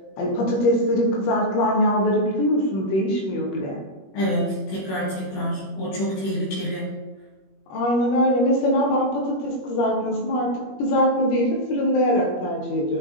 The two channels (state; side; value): late; right; 21 ms